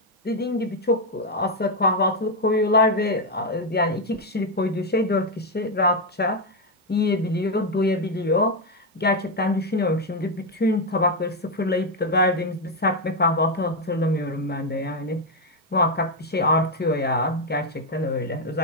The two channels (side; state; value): both; normal; correlation 0.04